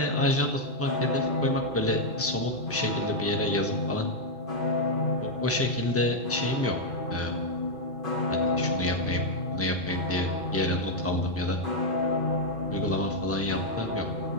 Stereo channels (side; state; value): both; normal; correlation -0.01